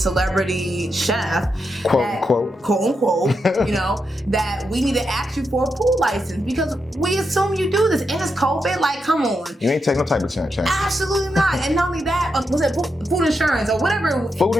chef, quote unquote, that we need to ask you for a food license, because we assume you do this, and it's COVID. Like, come on. You ain't taking no type of chance. Absolutely not. And not only that, was it food insurance or whatever? Food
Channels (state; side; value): normal; both; correlation 0.85